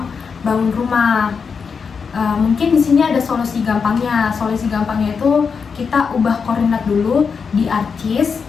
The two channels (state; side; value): quieter; right; 5.8 dB